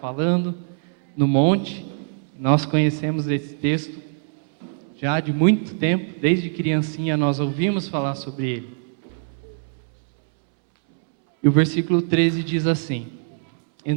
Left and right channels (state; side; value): silent; left; 64 dB below the other